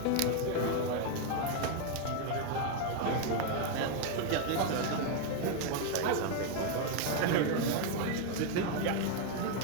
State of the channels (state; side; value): different; both; correlation 0.01